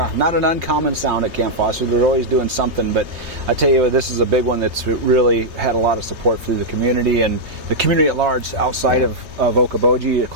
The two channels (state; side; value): late; left; 3.2 ms